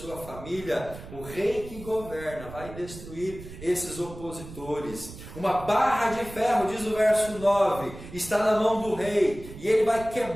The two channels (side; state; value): right; noise; rumble, 14 dB below the sound